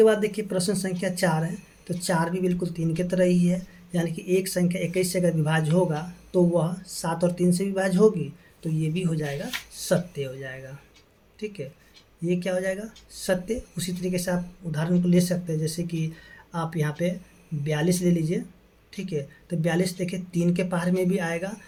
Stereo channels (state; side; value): identical; both; correlation 1.00